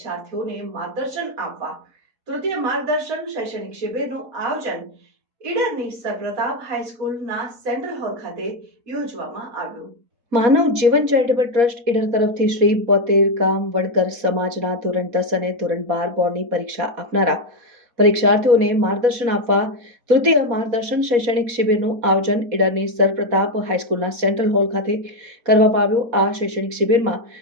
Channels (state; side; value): late; left; 4.2 ms